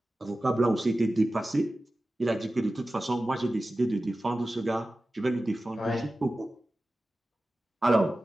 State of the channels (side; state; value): both; normal; correlation 0.95